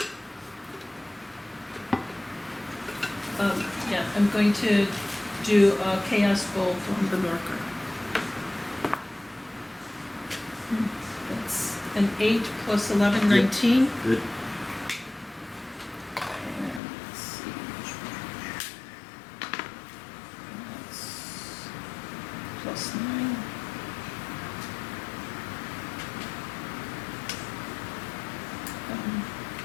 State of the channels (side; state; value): right; drops out; at 16.8 s